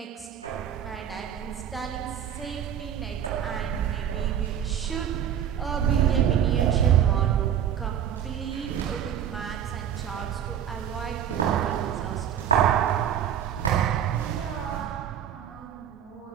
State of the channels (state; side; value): quieter; left; 9.5 dB